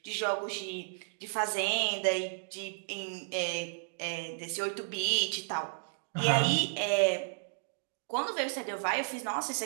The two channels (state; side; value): silent; left; digital silence